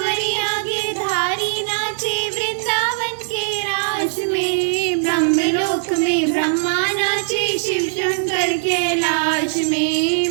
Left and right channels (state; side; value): silent; left; digital silence